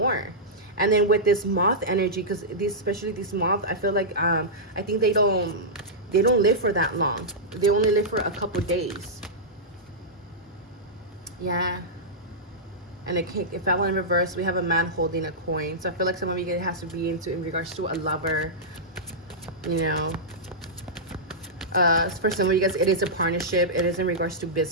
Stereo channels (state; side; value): normal; both; correlation -0.12